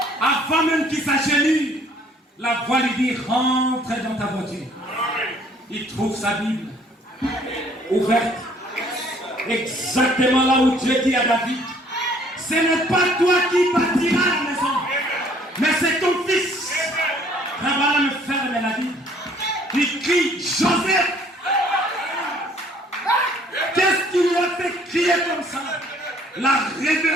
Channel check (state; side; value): normal; both; correlation 0.59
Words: Avant même qu'il s'agenouille, la voix lui dit, rentre dans ta voiture. Il trouve sa Bible ouverte. Exactement là où Dieu dit à David, ce n'est pas toi qui bâtiras la maison, mais c'est ton fils. Rabala me ferme la Bible. Il crie, Joseph. Qu'est-ce qui lui a fait crier comme ça? La